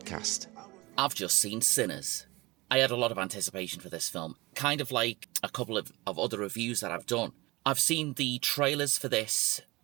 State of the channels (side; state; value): left; quieter; 22.4 dB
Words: I've just seen Sinners. I had a lot of anticipation for this film, kind of like a couple of other reviews that I've done. I've seen the trailers for this